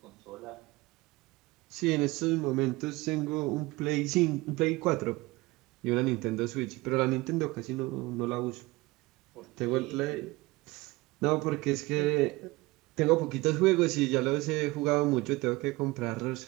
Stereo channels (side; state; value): left; quieter; 21.5 dB